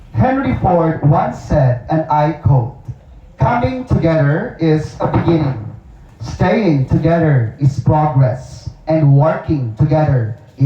Henry Ford once said, and I quote, "Coming together is a beginning. Staying together is progress. And working together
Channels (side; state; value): both; identical; correlation 1.00